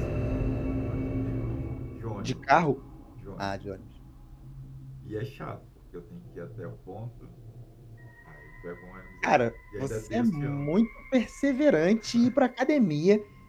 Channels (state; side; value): identical; both; correlation 1.00